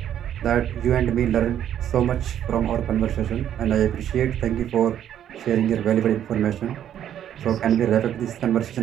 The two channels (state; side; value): quieter; left; 10.3 dB